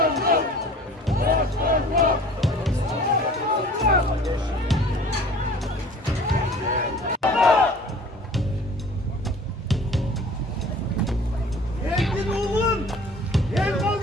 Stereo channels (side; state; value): both; normal; correlation 0.46